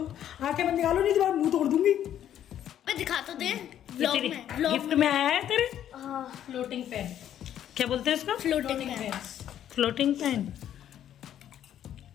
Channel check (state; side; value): quieter; right; 10.7 dB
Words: आंखें बंद निकालो नहीं तो मुंह तोड़ दूंगी। मैं दिखा तो दे व्लॉग में। गिफ्ट में आया है तेरे फ्लोटिंग पैन। क्या बोलते हैं इसको? Floating pan. Floating pan.